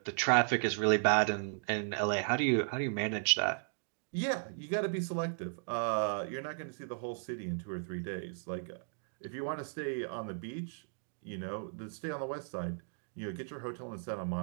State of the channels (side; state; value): left; silent; digital silence